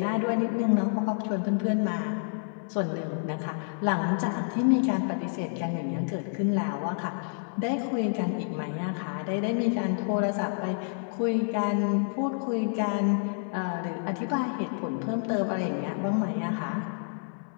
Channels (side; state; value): right; silent; digital silence